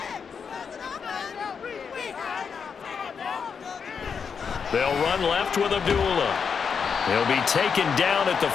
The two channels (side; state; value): right; quieter; 6.3 dB